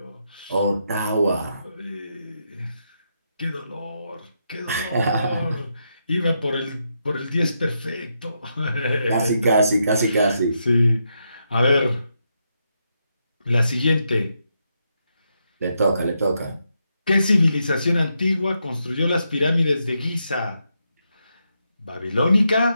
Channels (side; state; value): both; inverted; correlation -0.82